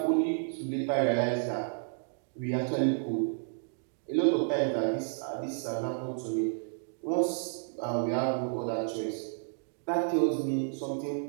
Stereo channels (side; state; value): left; silent; digital silence